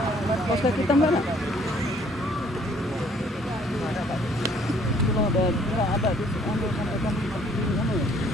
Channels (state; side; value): normal; both; correlation 0.61